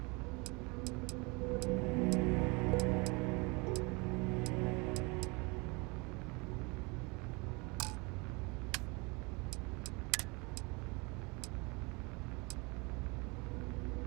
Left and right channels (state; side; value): quieter; left; 28.2 dB